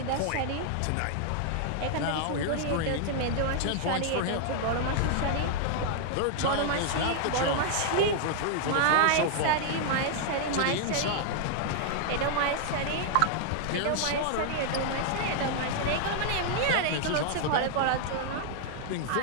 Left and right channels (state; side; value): different; both; correlation -0.01